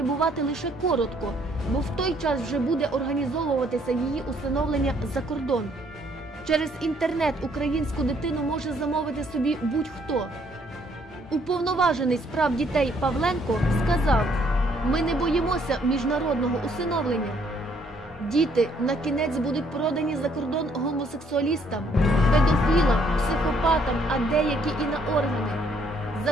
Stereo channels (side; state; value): both; normal; correlation 0.66